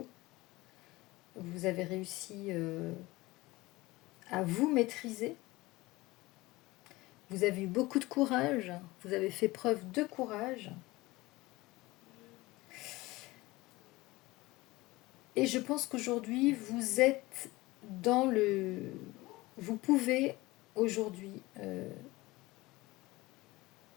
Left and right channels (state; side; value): quieter; right; 20.6 dB